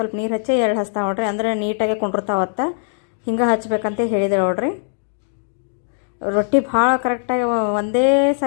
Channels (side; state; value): right; silent; digital silence